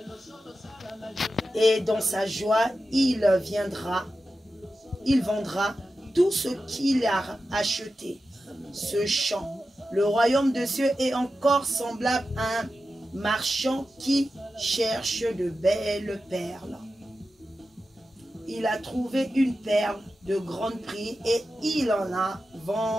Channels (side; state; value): both; normal; correlation 0.92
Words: Et dans sa joie, il vendra tout ce qu'il a acheté. Ce champ. Le royaume des cieux est encore semblable à un marchand qui cherche de belles perles. Il a trouvé une perle de grand prix et il